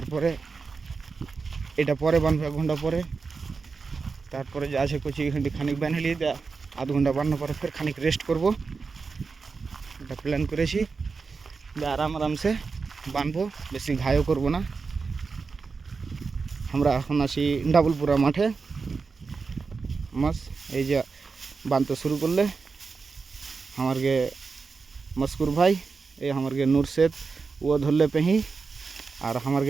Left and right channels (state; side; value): quieter; left; 4.7 dB